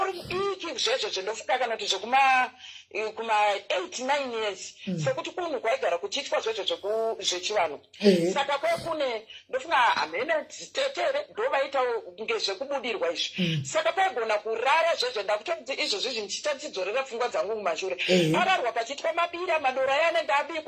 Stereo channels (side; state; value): both; identical; correlation 1.00